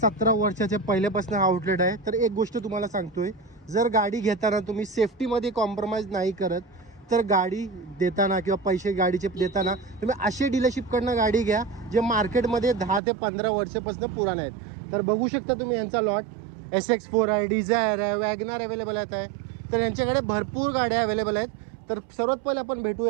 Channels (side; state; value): left; drops out; at 13.0 s